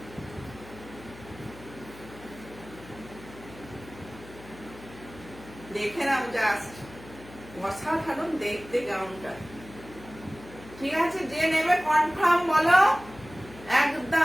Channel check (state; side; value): noise; left; hum, 18 dB below the sound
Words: দেখে নাও জাস্ট, অসাধারণ দেখতে গাউনটা। ঠিক আছে, যে নেবে কনফার্ম বলো